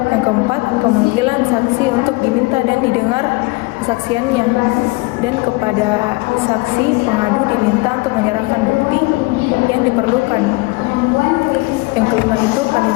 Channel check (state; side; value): quieter; right; 24.6 dB